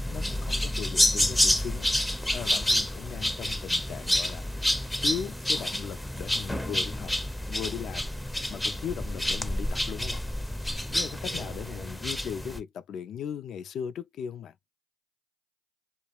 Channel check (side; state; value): both; normal; correlation 0.94